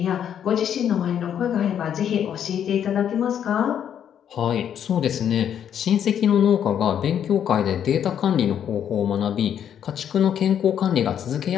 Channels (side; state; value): right; quieter; 9.2 dB